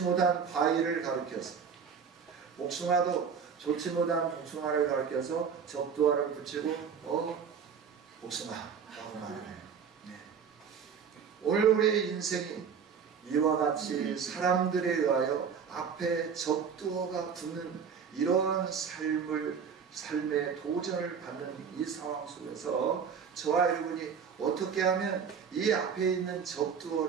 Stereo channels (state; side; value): quieter; left; 6.7 dB